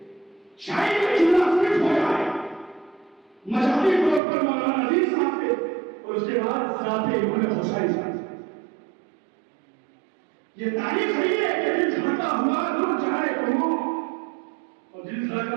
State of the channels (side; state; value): left; drops out; at 4.2 s